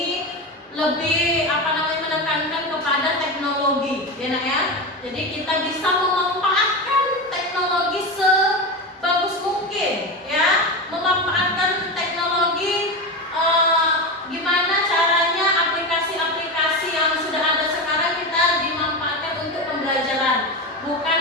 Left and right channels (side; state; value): both; normal; correlation 0.20